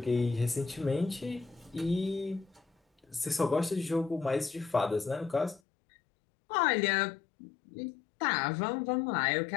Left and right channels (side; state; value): right; drops out; at 5.6 s